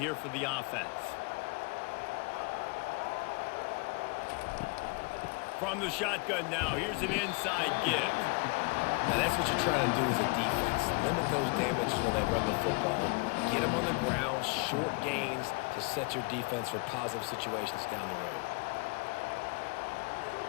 for the offense. From the shotgun now, here's an inside give. Now that's what you're trying to do as a defense. Limit those damages when they run the football. Get them on the ground, short gains to set your defense for positive situations down the road.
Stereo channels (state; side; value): quieter; right; 30.1 dB